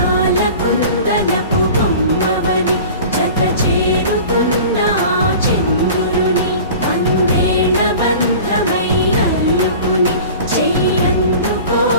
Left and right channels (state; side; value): inverted; both; correlation -0.40